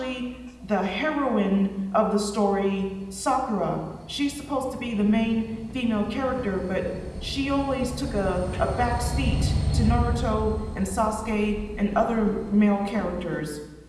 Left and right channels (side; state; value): both; identical; correlation 1.00